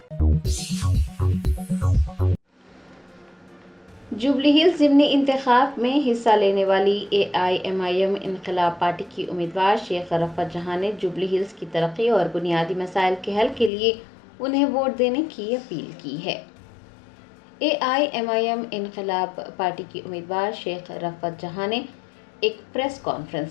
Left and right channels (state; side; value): drops out; right; at 13.7 s